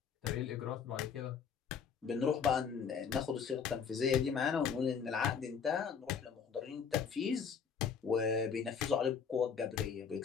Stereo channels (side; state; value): right; quieter; 6.7 dB